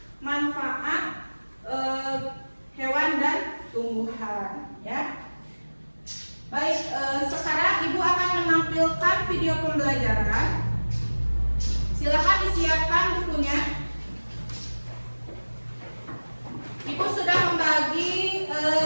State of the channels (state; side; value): inverted; both; correlation -1.00